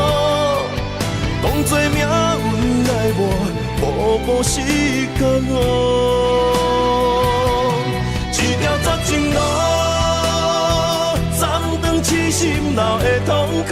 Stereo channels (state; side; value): identical; both; correlation 1.00